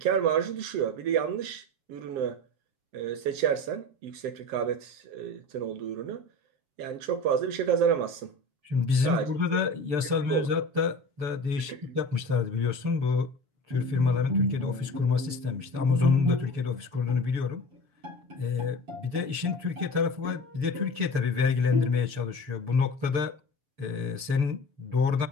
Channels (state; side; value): late; left; 6.8 ms